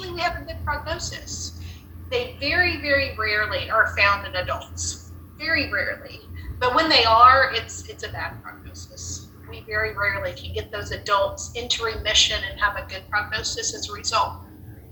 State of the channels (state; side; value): identical; both; correlation 1.00